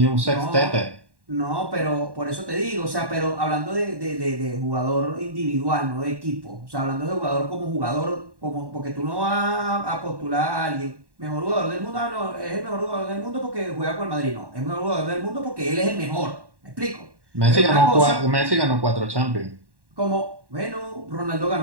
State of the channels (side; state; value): left; late; 1.1 ms